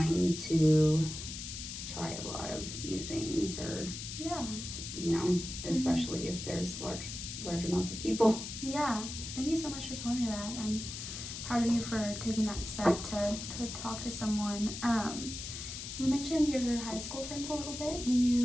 to try a lot of new things, or especially if there's large amounts of people. Yeah, thank you so much for telling me that. I'm proud of you for taking that step to talk to someone. You mentioned your high school friends a little bit. Do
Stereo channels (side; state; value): left; noise; hiss, 8 dB below the sound